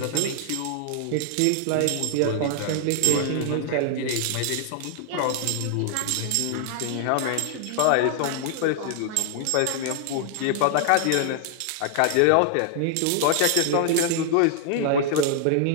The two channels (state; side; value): different; both; correlation 0.00